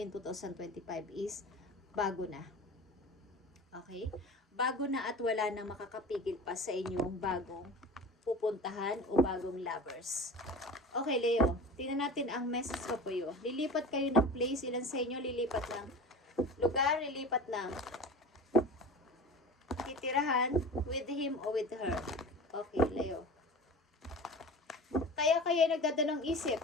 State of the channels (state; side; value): normal; both; correlation 0.35